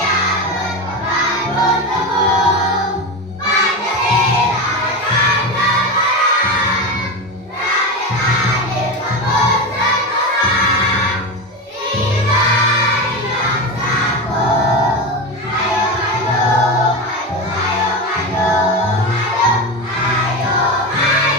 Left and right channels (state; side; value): normal; both; correlation 0.20